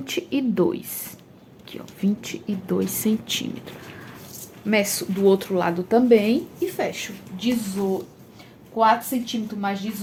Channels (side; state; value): both; identical; correlation 1.00